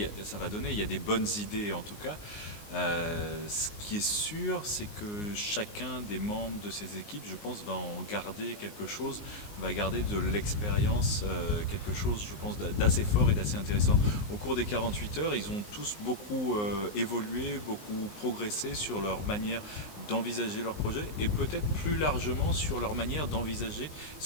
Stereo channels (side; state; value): right; late; 19 ms